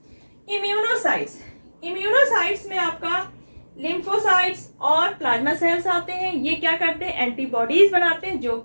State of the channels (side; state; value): both; inverted; correlation -1.00